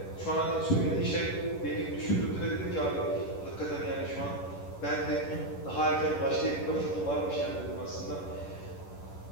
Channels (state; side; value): late; right; 11 ms